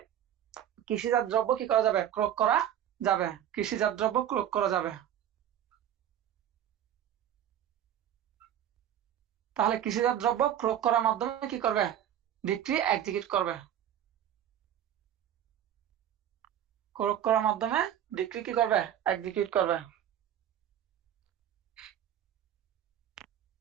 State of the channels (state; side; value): quieter; left; 10.5 dB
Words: কৃষিজাত দ্রব্য কি করা যাবে, ক্রয় করা যাবে, কৃষিজাত দ্রব্য ক্রয় করা যাবে। তাহলে কৃষিজাত দ্রব্য ক্রয় করার মাধ্যমে কি করবে, ডিক্রি এক্সিকিউট করবে, ক্রয় করার মাধ্যমে ডিক্রি কি করবে, এক্সিকিউট করবে।